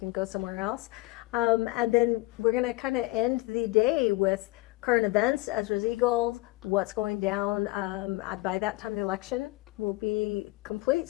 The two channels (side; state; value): right; quieter; 20.2 dB